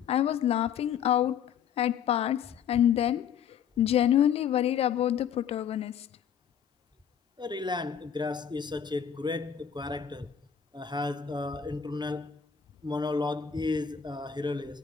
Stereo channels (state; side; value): quieter; right; 8.2 dB